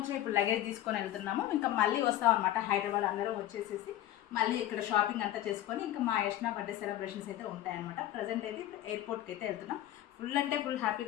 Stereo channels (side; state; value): right; quieter; 13.5 dB